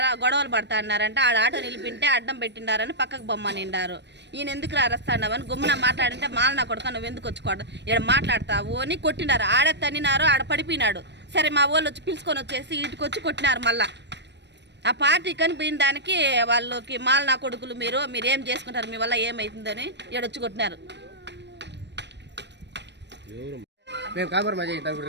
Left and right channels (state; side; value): late; left; 0.50 ms